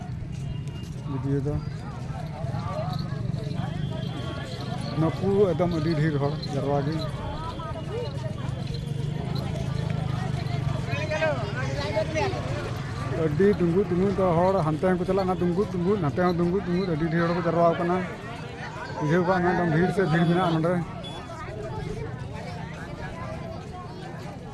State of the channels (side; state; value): both; identical; correlation 1.00